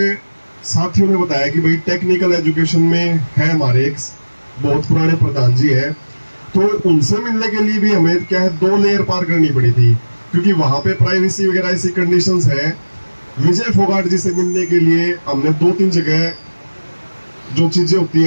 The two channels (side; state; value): both; inverted; correlation -1.00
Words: साथियों ने बताया कि भाई टेक्निकल एजुकेशन में है हमारे एक बहुत पुराने प्रधान जी है, तो उनसे मिलने के लिए भी हमें क्या है 2 लेयर पार करनी पड़ी थी, क्योंकि वहां पे प्राइवेसी वगैरह ऐसी कंडीशंस है। विजय फोगाट जी से मिलने के लिए हमने 2-3 जगह जो चीजें होती